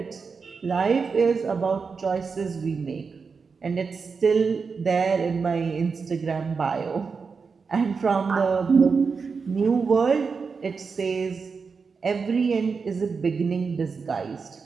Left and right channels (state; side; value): quieter; left; 5.2 dB